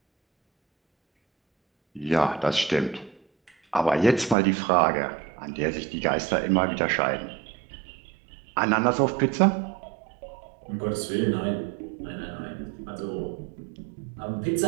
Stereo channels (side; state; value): left; drops out; at 4.4 s